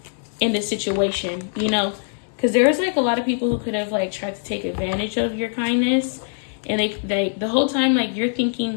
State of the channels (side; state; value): right; silent; digital silence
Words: in this situation, you know, because there's like a lot of people who could have like tried to take advantage of your kindness. And they the whole time, like, you're